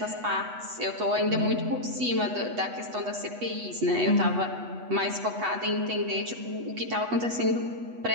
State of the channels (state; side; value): late; left; 8.1 ms